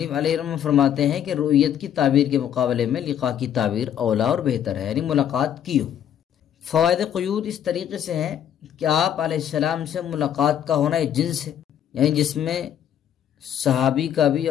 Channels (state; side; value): quieter; right; 9.8 dB